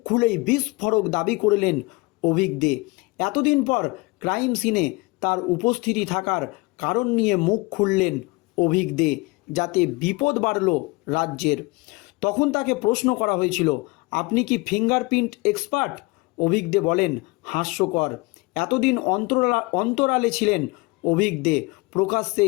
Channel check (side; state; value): right; quieter; 25.2 dB